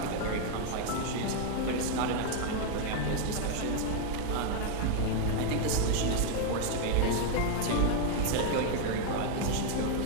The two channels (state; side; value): different; both; correlation 0.00